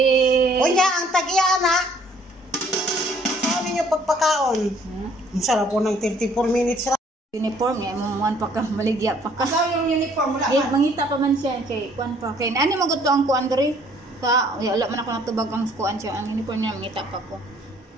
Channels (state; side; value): normal; both; correlation 0.60